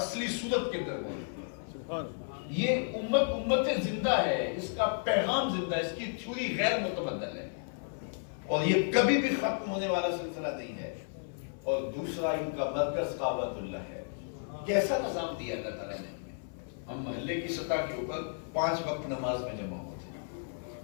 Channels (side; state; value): right; silent; 56 dB below the other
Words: صورت کے اندر موجود ہے۔ سبحان یہ امت زندہ ہے، اس کا پیغام زندہ ہے، اس کی تھیوری غیر متبدل ہے، اور یہ کبھی بھی ختم ہونے والا سلسلہ نہیں ہے۔ اور دوسرا ان کا مرکز کعبۃ اللہ ہے۔ کیسا نظام دیا اللہ تعالیٰ نے ہمیں؟ ہم محلے کی سطح کے اوپر 5 وقت نماز میں جمع ہوتے ہیں،